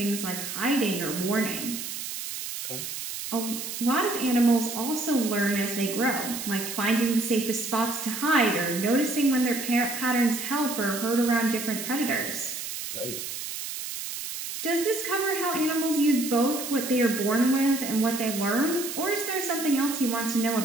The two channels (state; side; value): noise; right; hiss, 6 dB below the sound